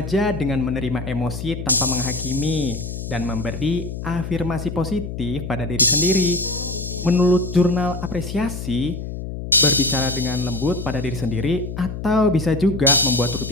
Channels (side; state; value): left; noise; hum, 7 dB below the sound